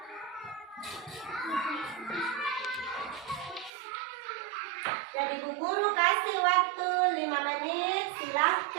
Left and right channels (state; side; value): drops out; left; at 3.7 s